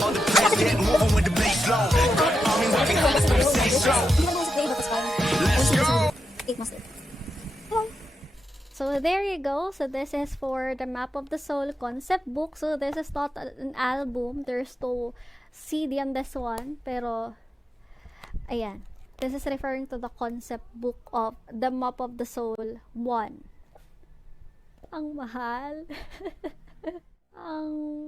On the place, get moving with the bass low. I mean, working hard, let's make it stay strong. Let's go. So there you go. So this is for the Map of the Soul concept book. So this is not an album. There's no CD on this one. Pero, ayan. This is referring to the concept book of the Map of the Soul 1. Ang mahal. Ang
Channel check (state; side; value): normal; both; correlation 0.87